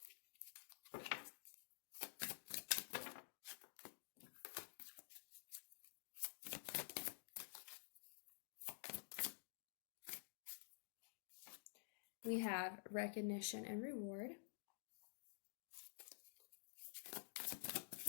We have recognition and reward.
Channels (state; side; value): silent; right; digital silence